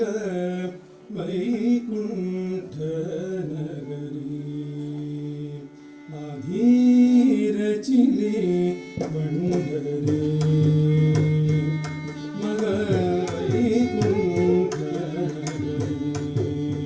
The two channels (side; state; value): both; identical; correlation 1.00